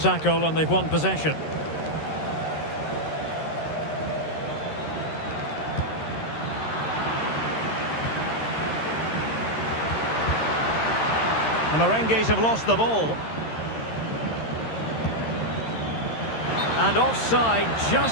and they've won possession. The Merengues have lost the ball. And offside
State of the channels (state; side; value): late; right; 13 ms